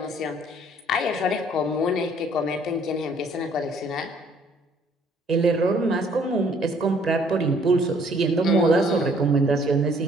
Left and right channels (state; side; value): normal; both; correlation 0.61